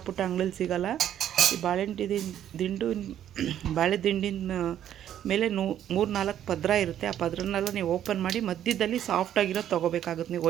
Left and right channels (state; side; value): quieter; left; 10.7 dB